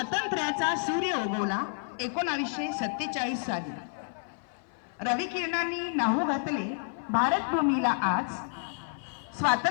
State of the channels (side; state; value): right; silent; 56 dB below the other